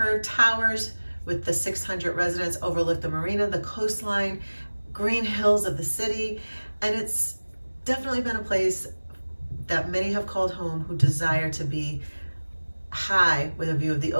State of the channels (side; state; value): both; inverted; correlation -1.00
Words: towers with the 600 residents overlook the marina, the coastline, green hills of the city, and it's definitely been a place that many have called home who desire to be high with a view of the